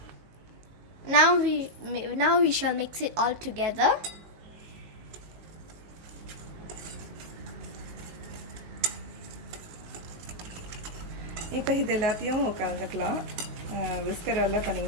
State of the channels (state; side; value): late; left; 18 ms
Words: Now we shall mix it all together. இப்போ இது எல்லாத்தையும் கலந்துக்கலாம். விஸ்கரால்